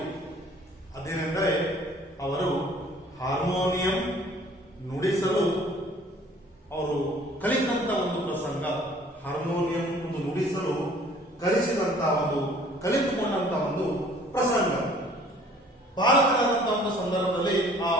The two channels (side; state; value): both; normal; correlation 0.54